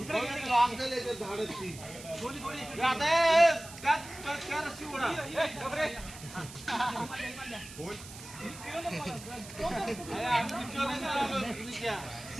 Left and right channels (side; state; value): right; noise; hiss, 15 dB below the sound